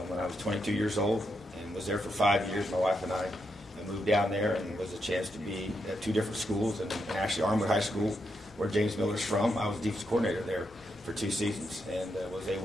when I was 22 years old and was there for 5 years. My wife and I moved down there, and it was a chance to be at 2 different schools, and actually Armwood High School, where James Miller's from. I was defense coordinator there for 2 seasons, and was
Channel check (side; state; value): both; normal; correlation 0.82